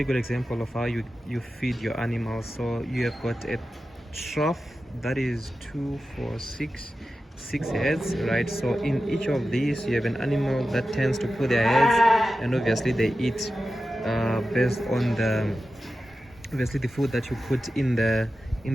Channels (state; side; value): normal; both; correlation 0.93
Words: good example of how you feed your animals. So you have got a trough that is 2 4 6 heads, right? So in each of these you have an animal that tends to put their heads, and obviously they eat based on the food that you put in